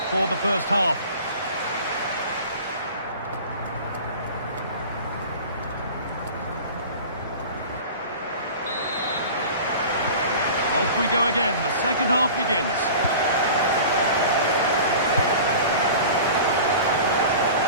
for the first half. Off we go again. The second half begins.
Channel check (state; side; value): inverted; both; correlation -0.39